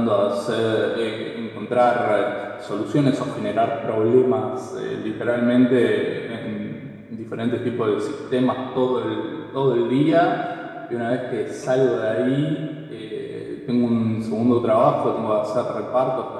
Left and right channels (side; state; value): both; identical; correlation 1.00